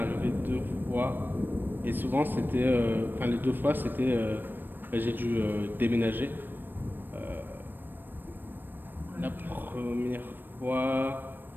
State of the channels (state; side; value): late; left; 0.094 ms